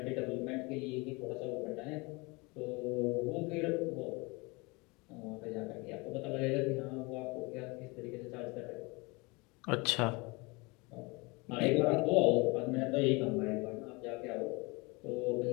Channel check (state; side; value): quieter; right; 26.6 dB